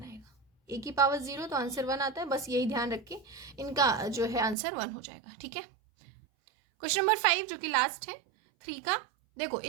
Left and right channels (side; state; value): left; drops out; at 4.5 s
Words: आएगा। ए की पावर 0 तो आंसर 1 आता है, बस यही ध्यान रख के इनका जो है आंसर 1 हो जाएगा। ठीक है, क्वेश्चन नंबर 5 जो कि लास्ट है 3 का। देखो